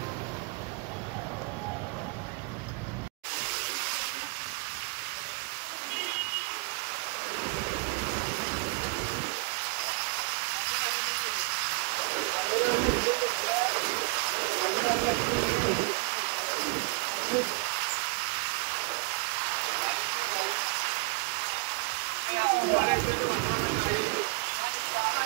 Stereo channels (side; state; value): left; quieter; 28.0 dB